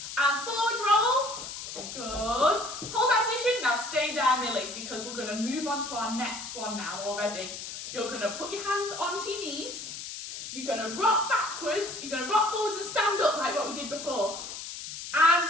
and forward roll. Good. Hold that position. Now stay there, Millie, because we're going to move on to our next one now already. You're going to put your hands onto your knees. You're going to rock backwards. You're going to rock forwards and stand up like what we did before. And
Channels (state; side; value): noise; left; hiss, 9 dB below the sound